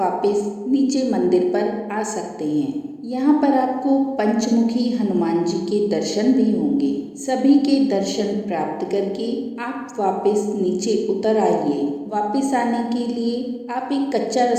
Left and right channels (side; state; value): both; identical; correlation 1.00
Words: नीचे मंदिर पर आ सकते हैं। यहाँ पर आपको पंचमुखी हनुमान जी के दर्शन भी होंगे। सभी के दर्शन प्राप्त करके आप वापस नीचे उतर आइए। वापस आने के लिए आप एक कच्चा